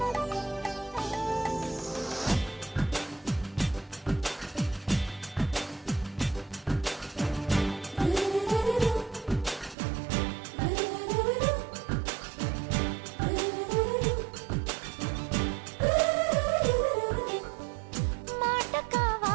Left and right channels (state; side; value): drops out; left; at 9.8 s